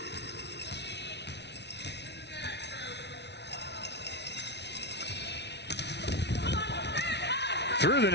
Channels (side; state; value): right; late; 0.50 ms